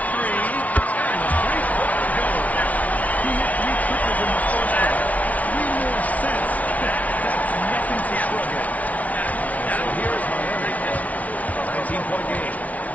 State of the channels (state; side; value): late; right; 0.070 ms